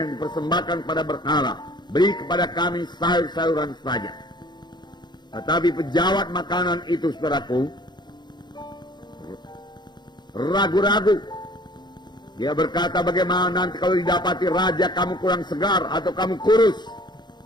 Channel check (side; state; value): right; late; 0.21 ms